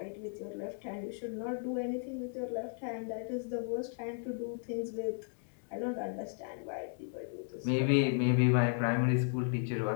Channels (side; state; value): right; silent; 54 dB below the other